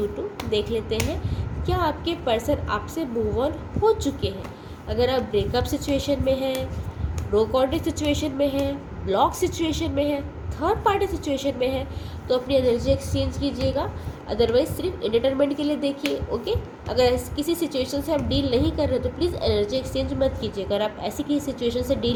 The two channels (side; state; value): both; identical; correlation 1.00